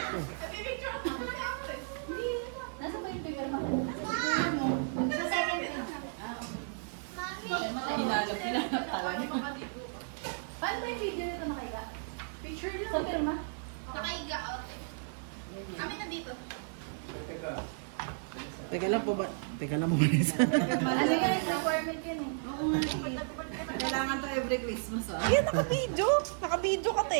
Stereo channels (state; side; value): silent; left; digital silence